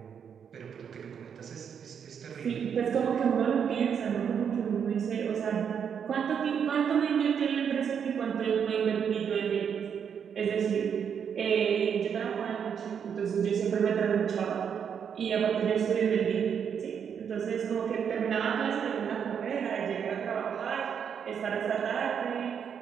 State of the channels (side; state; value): left; quieter; 7.5 dB